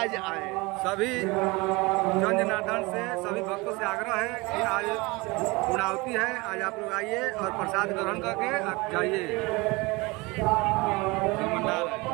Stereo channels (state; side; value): quieter; left; 24.3 dB